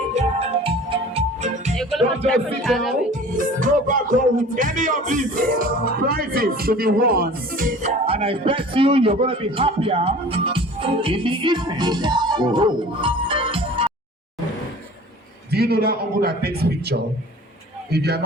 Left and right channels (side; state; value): both; normal; correlation 0.44